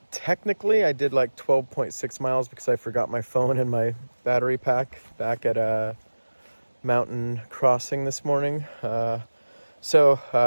technically I did like 12.6 miles because I forgot my phone and my battery pack back at Mountain Crossing this morning. So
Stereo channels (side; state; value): both; inverted; correlation -1.00